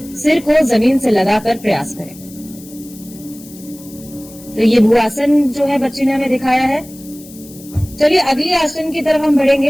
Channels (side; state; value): left; noise; hiss, 20 dB below the sound